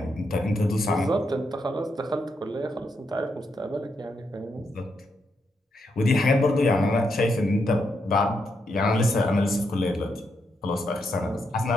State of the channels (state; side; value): normal; both; correlation 0.81